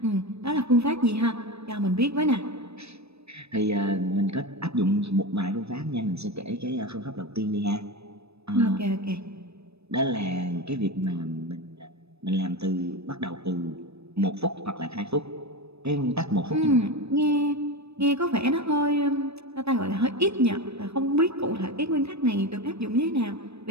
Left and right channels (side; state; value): left; late; 0.79 ms